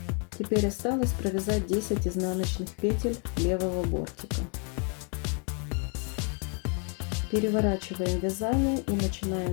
Теперь осталось провязать 10 изнаночных петель левого бортика. Переворачиваем вязание и начинаем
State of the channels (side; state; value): right; quieter; 38.3 dB